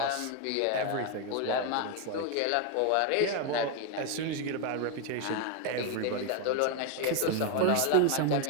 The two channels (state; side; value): different; both; correlation 0.01